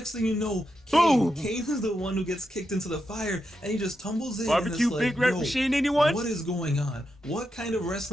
thing you know, Boom! Kane is the one who gets kicked into the fire, and he just tumbles in. Barbecue and it's like, Big Red yo, Machine, anyone? what is going on? What kind of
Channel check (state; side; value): normal; both; correlation 0.86